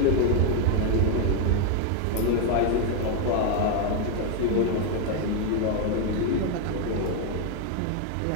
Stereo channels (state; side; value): different; both; correlation 0.01